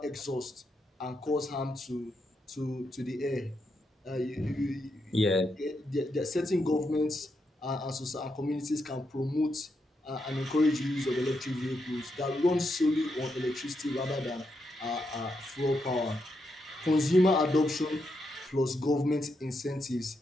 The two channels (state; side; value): normal; both; correlation 0.82